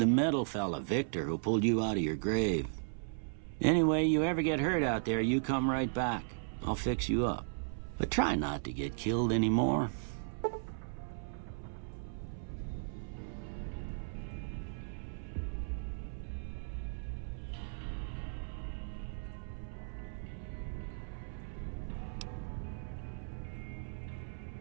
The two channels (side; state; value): left; silent; 54 dB below the other